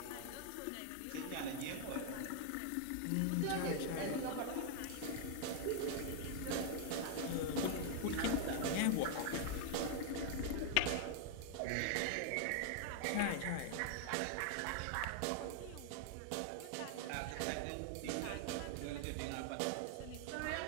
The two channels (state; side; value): different; both; correlation 0.00